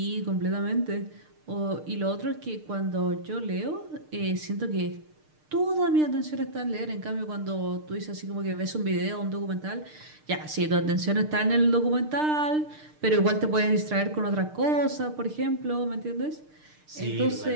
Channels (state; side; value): late; left; 6.6 ms